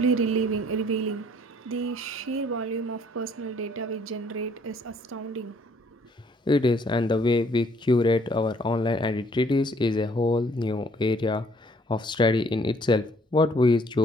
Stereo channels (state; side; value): normal; both; correlation 0.62